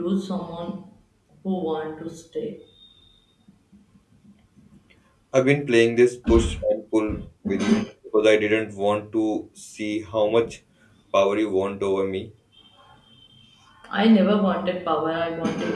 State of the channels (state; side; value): identical; both; correlation 1.00